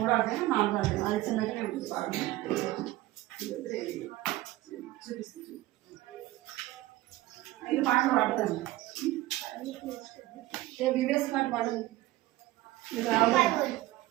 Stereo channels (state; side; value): quieter; left; 17.0 dB